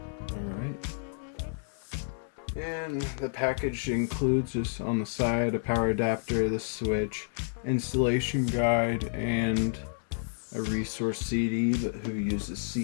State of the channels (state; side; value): silent; right; 58 dB below the other